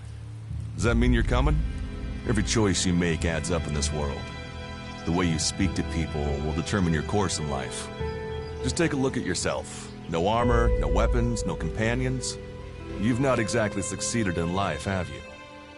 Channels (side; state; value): both; identical; correlation 1.00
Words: Does that mean you're coming? Every choice you make adds up in this world. The way you speak to people will determine your course in life. Just take a look at yourself. No armor, no weapons, no companions. You've not exactly succeeded in life, have